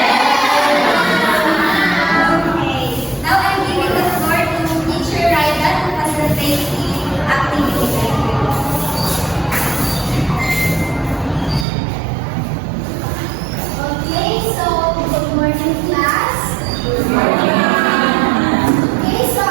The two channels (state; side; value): drops out; left; at 11.7 s